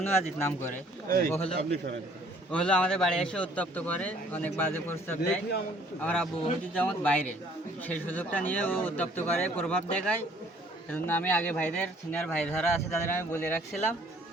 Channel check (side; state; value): both; normal; correlation 0.58